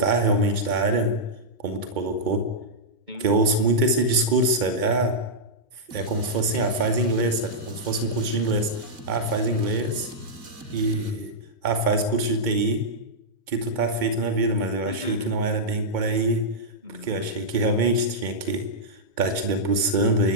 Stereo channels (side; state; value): left; late; 2.2 ms